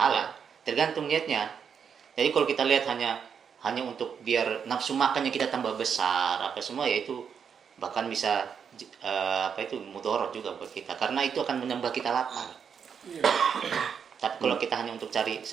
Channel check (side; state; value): left; quieter; 7.1 dB